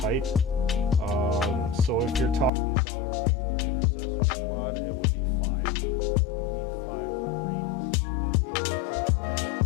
So if you're talking about a regular intercessor squad, it would be 5. You need 5 Marines to play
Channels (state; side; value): drops out; right; at 2.5 s